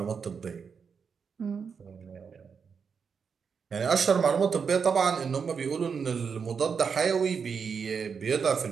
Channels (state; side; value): quieter; left; 6.1 dB